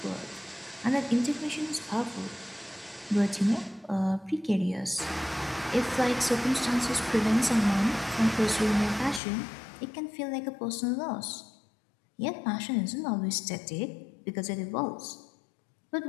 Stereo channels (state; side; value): drops out; right; at 9.2 s